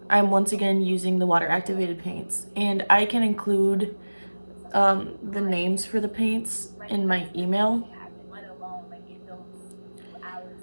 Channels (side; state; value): both; inverted; correlation -1.00